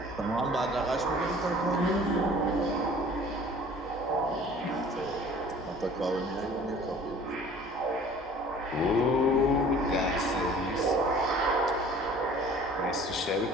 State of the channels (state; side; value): normal; both; correlation 0.48